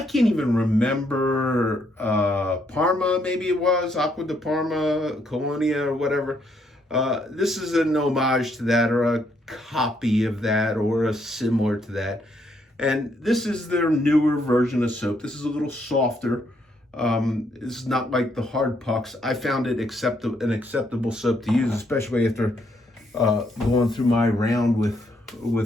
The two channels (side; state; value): both; normal; correlation 0.73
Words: can't even remember. Parma, maybe it was Acqua di Parma, Colonia, or whatever. This is an homage to that, or a copy of that, or a similar to that. And this is their newer version of soap. This is a little softer. This is not like the hard pucks. I found it an acceptable soap to use, especially after going through my round with